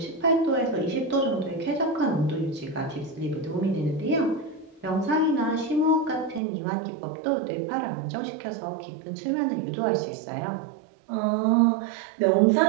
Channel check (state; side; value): drops out; left; at 6.4 s